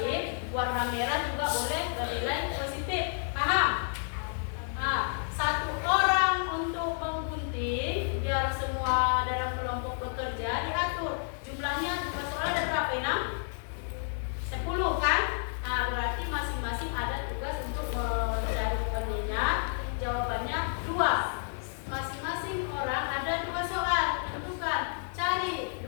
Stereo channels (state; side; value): silent; right; digital silence